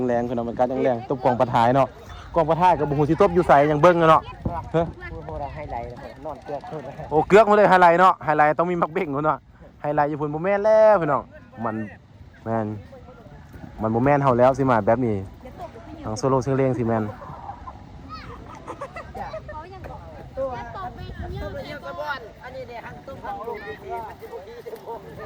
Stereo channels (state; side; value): identical; both; correlation 1.00